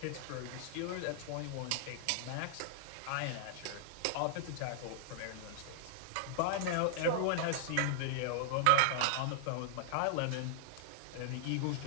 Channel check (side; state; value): both; different; correlation -0.01